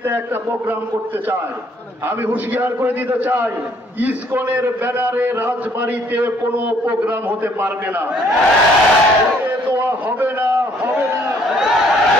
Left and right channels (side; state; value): both; normal; correlation 0.63